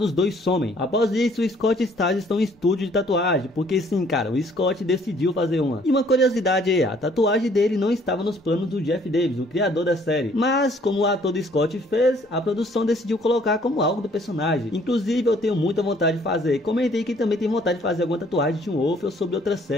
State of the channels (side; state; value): both; normal; correlation 0.61